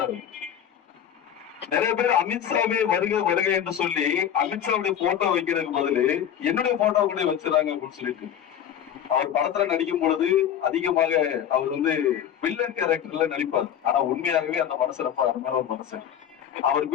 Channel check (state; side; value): quieter; right; 9.4 dB